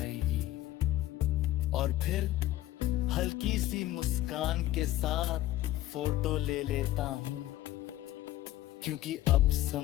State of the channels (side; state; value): right; quieter; 15.0 dB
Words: और फिर हल्की सी मुस्कान के साथ फोटो ले लेता हूँ, क्योंकि अब